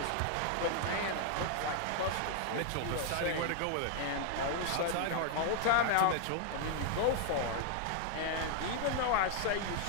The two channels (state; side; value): different; both; correlation 0.00